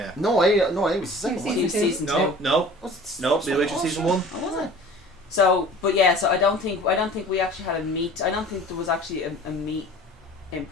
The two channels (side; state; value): both; normal; correlation 0.44